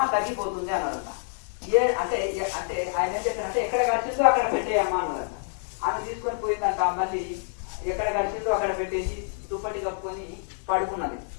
తగ్గిపోతుంది అన్నారంట. అంటే ఆయన ఏం చెప్పారంటే, ఎక్కడ గడిచిందో అక్కడ పెట్టేయమ్మా అన్నారంట. ఆమె తీసుకొని పోయిందంట. మళ్ళీ ఎక్కడ గడిచిందో అక్కడ పెట్టేసి దుప్పటి కప్పుకొని పడుకున్నది.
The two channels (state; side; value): silent; right; digital silence